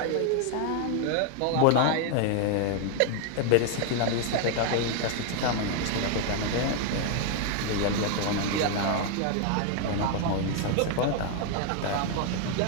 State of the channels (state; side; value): different; both; correlation 0.00